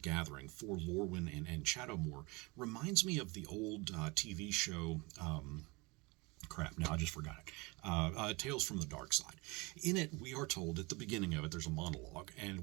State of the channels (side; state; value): left; quieter; 26.0 dB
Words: for Lorwyn and Shadowmoor reminds me of the old TV show crap, now I just forgot it. Tales from the Dark Side. In it, we are told at the beginning of it, there's a monologue,